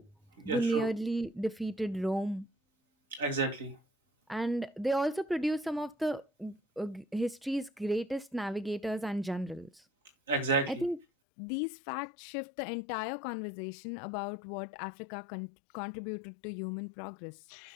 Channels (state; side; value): drops out; right; at 11.1 s